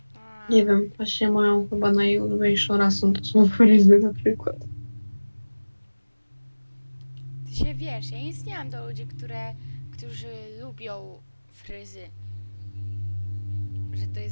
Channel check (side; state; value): both; inverted; correlation -1.00